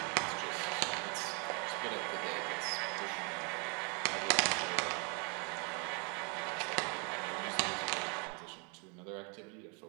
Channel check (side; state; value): left; quieter; 34.6 dB